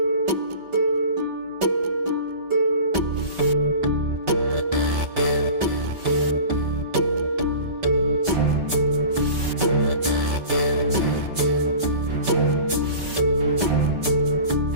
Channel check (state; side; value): late; left; 5.3 ms